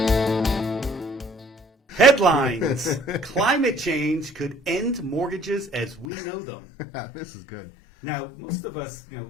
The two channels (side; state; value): right; drops out; at 6.1 s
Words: Headlines. Climate change could end mortgages as we know them. This is good. Now, most of us,